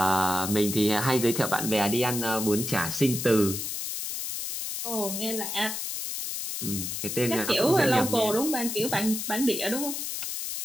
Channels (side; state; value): left; noise; hiss, 4 dB below the sound